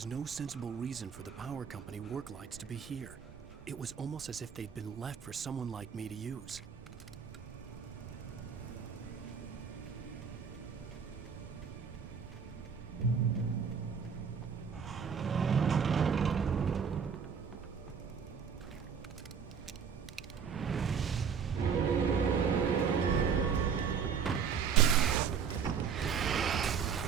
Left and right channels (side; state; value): left; quieter; 6.8 dB